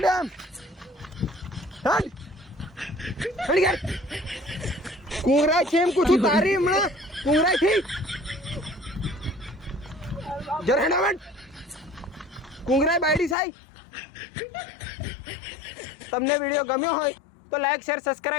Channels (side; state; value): right; drops out; at 13.4 s